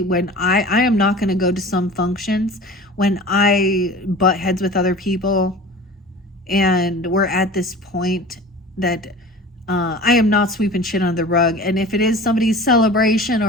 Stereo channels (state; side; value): normal; both; correlation 0.39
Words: when I am not going to go to some functions when I butt heads with other people, and we're at this point that I am not sweeping shit under the rug. And if it is somebody's celebration